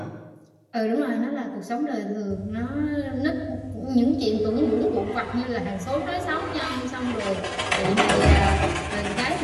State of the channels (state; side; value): identical; both; correlation 1.00